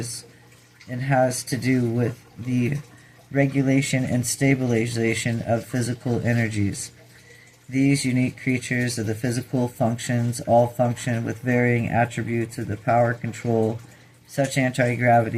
and has to do with the regulation and stabilization of physical energies. These unique creatures of the physical functions all function with varying attributes of the power control, such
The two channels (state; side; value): identical; both; correlation 1.00